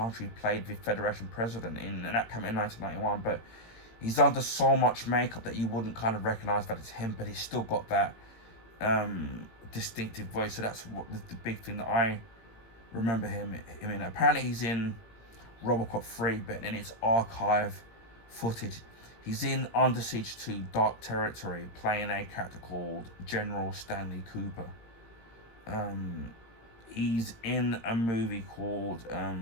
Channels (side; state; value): right; late; 18 ms